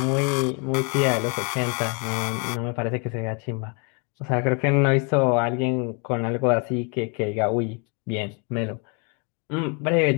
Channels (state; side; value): quieter; right; 34.9 dB